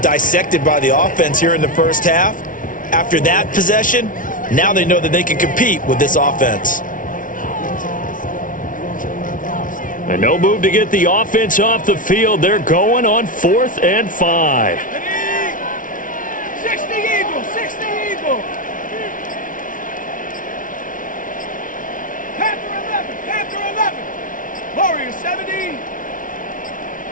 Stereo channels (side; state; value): right; late; 0.38 ms